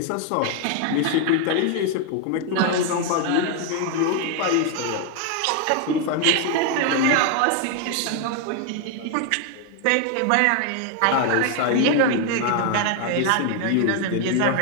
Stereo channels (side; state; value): both; different; correlation 0.01